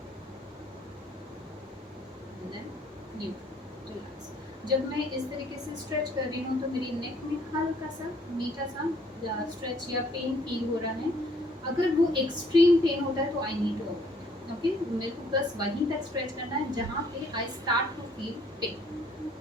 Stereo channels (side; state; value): both; normal; correlation 0.62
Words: And then neutral, relax. जब मैं इस तरीके से stretch कर रही हूँ तो मेरी नेक में हल्का सा मीठा सा स्ट्रेच या पेन फील हो रहा है। अगर वो एक्सट्रीम पेन होता है तो आई नीड टू ओके, मेरे को बस वहीं तक स्ट्रेच करना है जहाँ पे I start to feel pain,